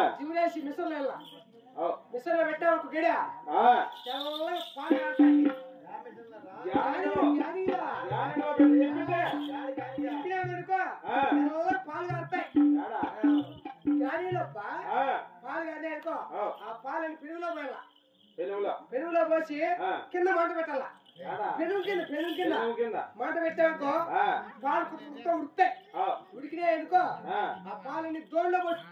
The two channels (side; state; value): both; identical; correlation 1.00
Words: జివురేసి మిషన్లో వెళ్ళా మిషన్లో పెట్టా ఒక గడి తెల్లగా పాలు కారుతాయి. పాలు కారుతాయి గాడిలోప్ప పాలు కాదే అనుకో ఆ పాలని పెరుగులో పోసి కింద మంట పెట్టాలా. పెరుగు కింద మంట పెట్టానుకో పాలు కుక్క ఉడుతాయి. ఉడికినాయి అనుకో ఆ పాలని దోణిలో పోసి